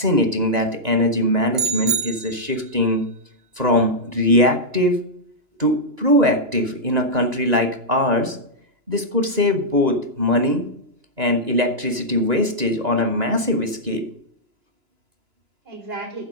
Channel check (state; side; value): late; left; 2.9 ms